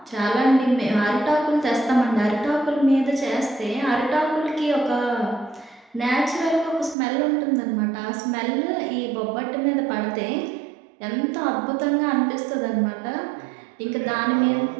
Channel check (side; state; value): left; drops out; at 7.0 s